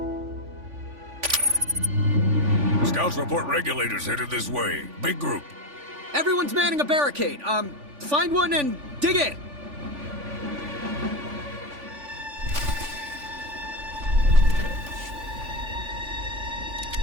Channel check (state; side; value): late; left; 3.5 ms